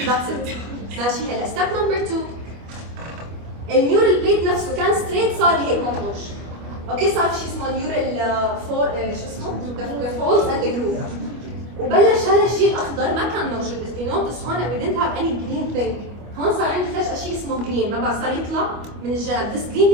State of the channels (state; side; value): late; left; 25 ms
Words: That's it. ماشي هلا. Step number 2. النيورال بليت نفسه كان ستريت صار هيك مطروش. اوكي صار في شيء اسمه نيورال شو اسمه؟ the folds and the groove. وبلش هذا الشيء الاخضر ما كان موجود. If you notice هون we didn't have any green thing. هون صار عندي فجأة شيء اسمه green. ما بعرف صار يطلع من الجنب. This green